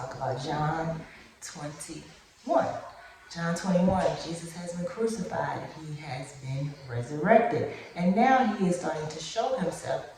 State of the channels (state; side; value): identical; both; correlation 1.00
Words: about John 21. John 21, Jesus has been crucified. He has been resurrected. And now he is starting to show himself